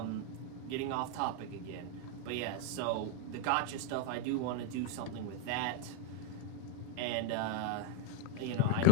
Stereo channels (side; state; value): both; different; correlation 0.01